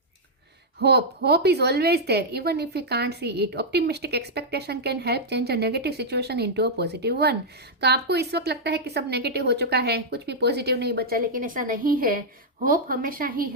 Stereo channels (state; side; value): normal; both; correlation -0.06